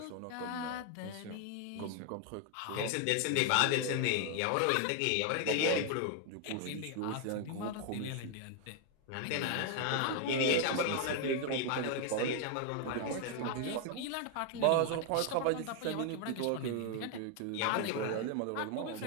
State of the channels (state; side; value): different; both; correlation 0.00